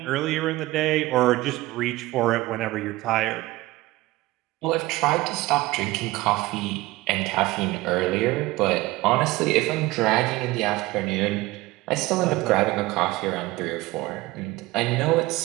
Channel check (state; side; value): quieter; left; 19.4 dB